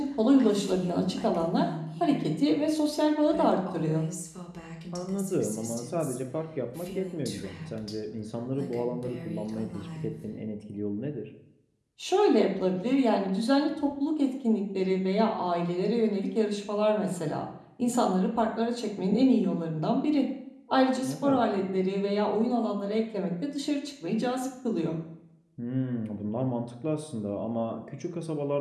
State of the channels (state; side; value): identical; both; correlation 1.00